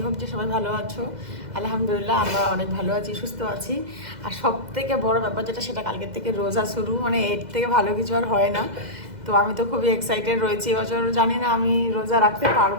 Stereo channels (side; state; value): left; late; 2.0 ms